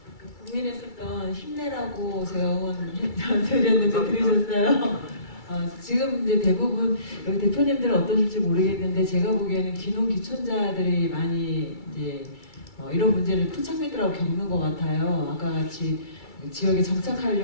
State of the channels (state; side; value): late; right; 2.3 ms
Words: 고민했었던 힘내라고 제가 응원 드렸는데 들으셨어요? 지금 이제 대부분 여기 대표님들은 어떠실지 모르겠는데 제가 보기에는 귀농귀촌자들이 많이 이제 이런 문제를 토착민들하고 겪는 것 같아요. 아까 같이 지역에